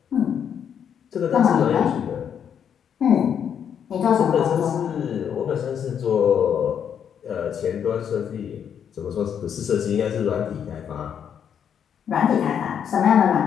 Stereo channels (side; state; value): right; quieter; 8.3 dB